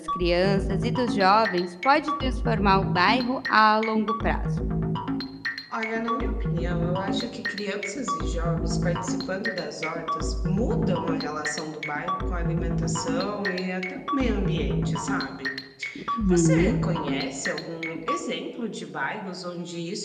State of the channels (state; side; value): identical; both; correlation 1.00